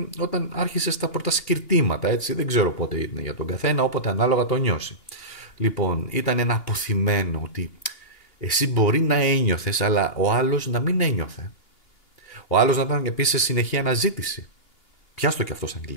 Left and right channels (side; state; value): right; late; 2.8 ms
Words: όταν άρχισες τα πρώτα σκυρτήματα, έτσι, δεν ξέρω πότε είναι για τον καθένα, όποτε ανάλογα το νιώσει. Λοιπόν, ήταν ένα αποθυμένο ότι εσύ μπορεί να ένιωθες, αλλά ο άλλος να μην ένιωθε. Ο άλλος να ήταν επίσης σε συνεχή αναζήτηση. Πιάστο και αυτό σαν